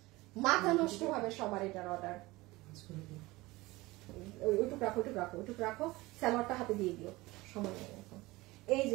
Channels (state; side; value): quieter; left; 20.7 dB